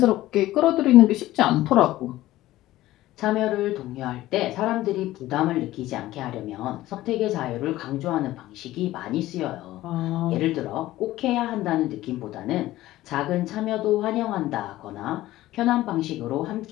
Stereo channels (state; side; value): quieter; right; 15.9 dB